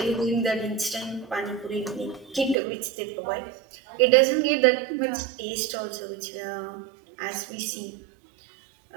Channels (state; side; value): drops out; left; at 2.6 s